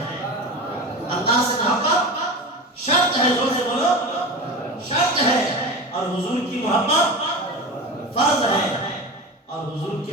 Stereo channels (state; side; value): normal; both; correlation 0.28